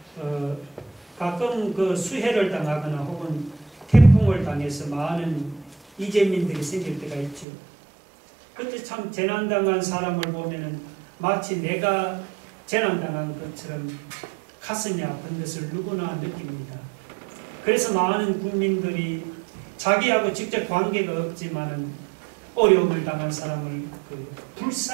가끔 그 수해를 당하거나 혹은 태풍을 당해서 많은 이재민들이 생길 때가 있죠. 그때 참 재난당한 사람을 보면은 마치 내가 재난당한 것처럼 가슴이 아픈 것을 누구나 느낍니다. 그래서 많은 국민들이 자기하고 직접 관계가 없지만은 어려움을 당한 사람을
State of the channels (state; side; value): drops out; left; at 7.5 s